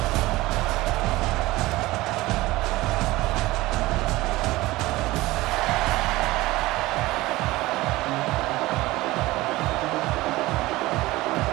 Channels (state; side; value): quieter; left; 19.0 dB